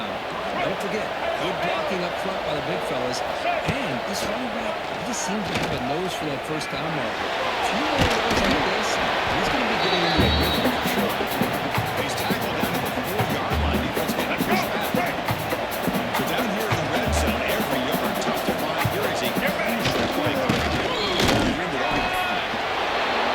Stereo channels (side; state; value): both; identical; correlation 1.00